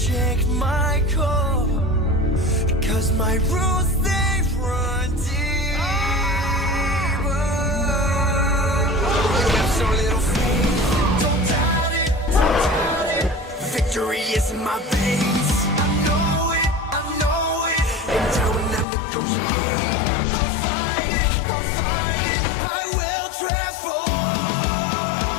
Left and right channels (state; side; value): drops out; right; at 18.9 s